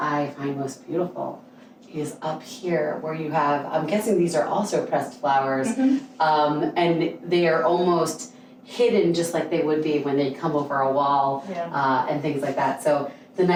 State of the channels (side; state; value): both; identical; correlation 1.00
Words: find most beautiful is up here where you have, I'm guessing these are also pressed flowers, and they are almost hidden just like they would be when they come over a wall, and things like that. So the